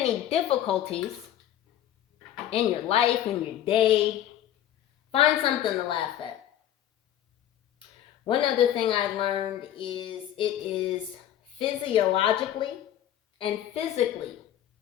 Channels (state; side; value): quieter; right; 11.5 dB